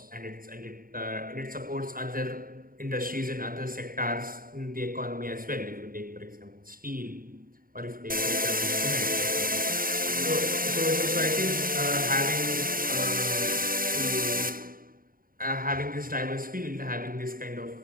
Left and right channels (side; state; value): left; late; 0.41 ms